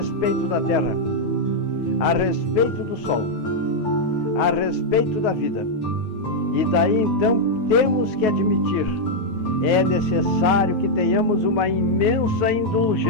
da Terra, a respeito do Sol, a respeito da vida. E daí então temos que admitir, é necessário que tenhamos uma imensa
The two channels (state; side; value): late; right; 9.4 ms